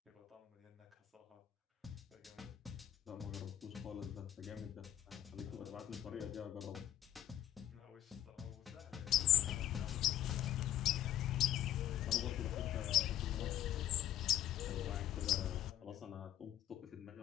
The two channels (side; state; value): right; quieter; 12.2 dB